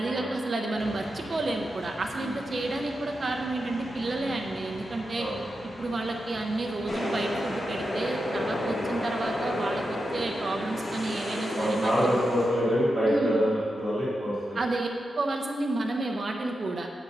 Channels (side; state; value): both; normal; correlation 0.88